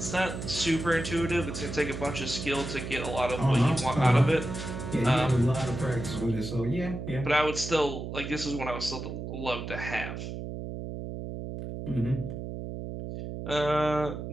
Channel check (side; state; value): right; noise; hum, 7 dB below the sound